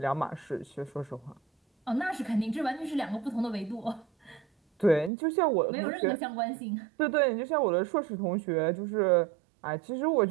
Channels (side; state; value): left; drops out; at 5.1 s